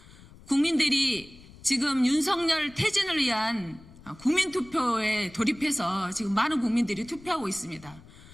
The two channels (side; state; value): left; noise; rumble, 21 dB below the sound